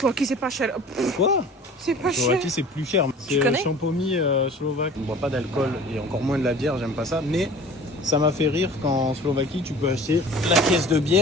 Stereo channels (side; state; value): both; normal; correlation 0.44